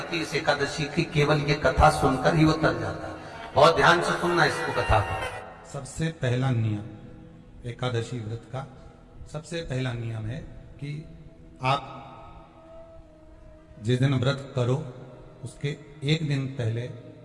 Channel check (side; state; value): both; identical; correlation 1.00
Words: इस एकादशी की केवल ये कथा सुनकर ही वो तर जाता है। बहुत ध्यान से सुनना इसको, कथा को। सबसे पहला नियम एकादशी व्रत का, सबसे पहला नियम है कि आप जिस दिन व्रत करो उसके एक दिन पहले